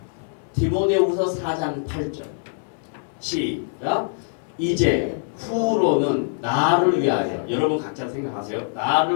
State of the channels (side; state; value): right; silent; 63 dB below the other